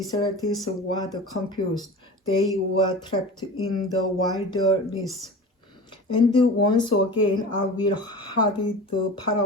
were confused. They were trapped in the wilderness. And once again I will harden the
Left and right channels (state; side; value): normal; both; correlation 0.35